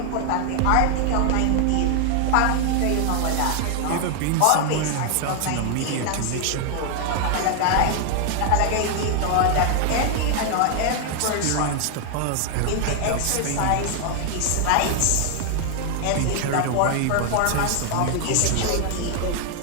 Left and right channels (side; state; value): both; different; correlation 0.00